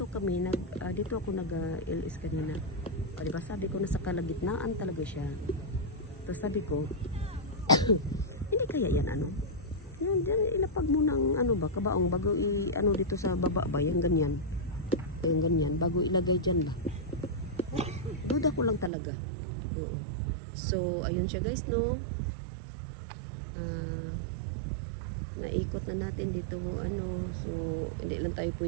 ako nag-LS kanina. O, diba? Sabi ko nasa kalagitnaan talaga siya. Tapos sabi ko, hindi kaya yan ano? Yan, ilapag mo ng ano ba, kabaong bago ano dito sa baba ba, yung ganyan. Yung ganyan, bago ilagay dyan ba. Duda ko lang talaga. Oo. So, ayun siya guys, no? Naikot na natin dito, ano. So, hindi lang tayo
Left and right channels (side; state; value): left; drops out; at 18.9 s